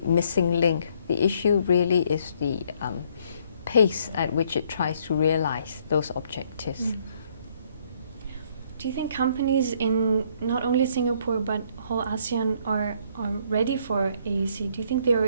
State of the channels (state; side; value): inverted; both; correlation -0.66